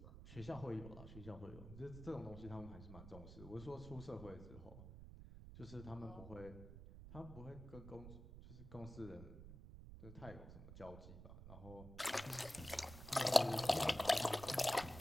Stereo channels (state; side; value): noise; right; rumble, 13 dB below the sound